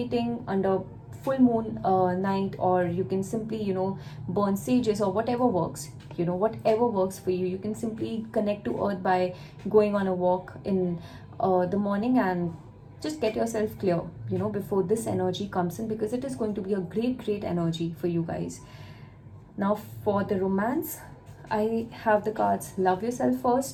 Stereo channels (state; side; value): identical; both; correlation 1.00